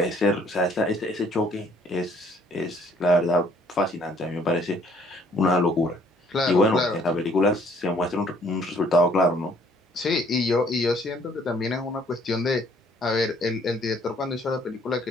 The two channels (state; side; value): normal; both; correlation 0.61